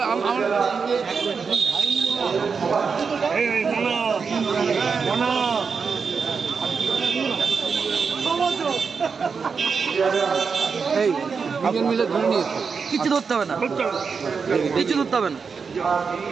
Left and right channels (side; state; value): left; quieter; 5.5 dB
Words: এই দুজন মিলে ধরে নিয়ে আসেন। কিছু ধরতে হবে না, কিছু ধরতে হবে না।